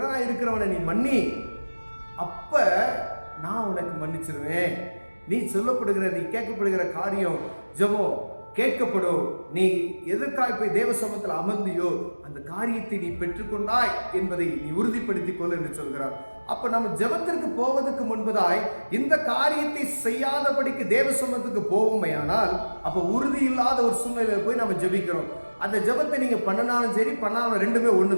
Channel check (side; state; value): both; inverted; correlation -1.00